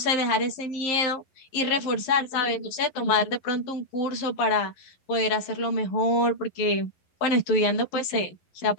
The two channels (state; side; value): late; right; 11 ms